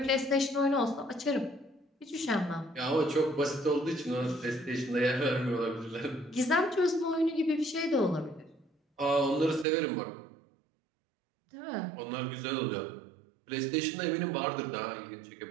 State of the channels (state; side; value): drops out; left; at 9.7 s